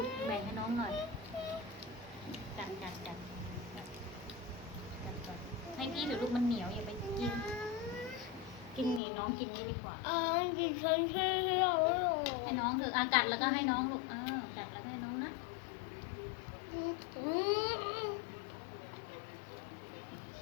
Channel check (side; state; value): right; drops out; at 9.0 s